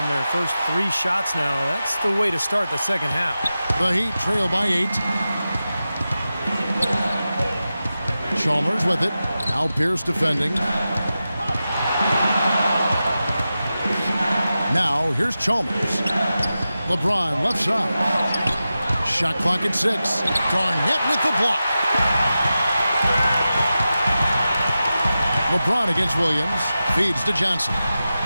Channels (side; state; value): both; inverted; correlation -0.93